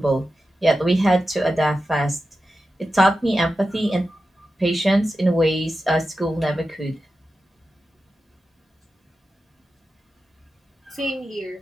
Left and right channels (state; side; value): normal; both; correlation 0.91